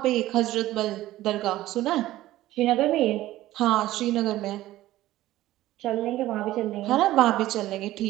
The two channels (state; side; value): quieter; left; 15.5 dB